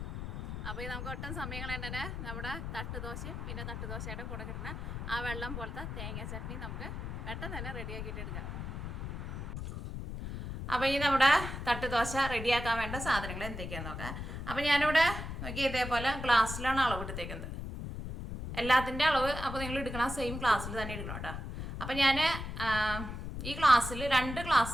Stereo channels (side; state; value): left; noise; rumble, 6 dB below the sound